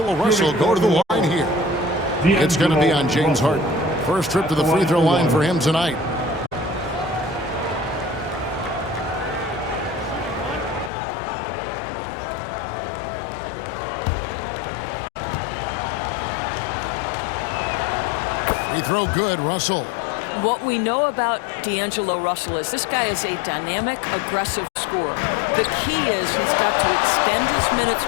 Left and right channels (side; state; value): right; drops out; at 10.9 s